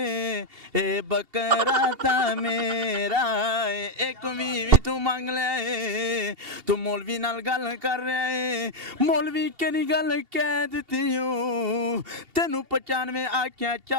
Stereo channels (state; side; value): late; left; 2.7 ms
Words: ਇਹ ਬੱਕਰਾ ਤਾਂ ਮੇਰਾ ਏ ਇੱਕ ਵੀ ਤੂੰ ਮੰਗ ਲਿਆ ਏ ਤੂੰ ਮੌਲਵੀ ਨਾਲ ਗੱਲ ਕਰ ਰਿਹਾ ਏ ਮੌਲਵੀ ਕਿਹੜੀ ਗੱਲ ਕਹਿ ਦਿੱਤੀ ਓ ਤੈਨੂੰ 95 ਆਖਿਆ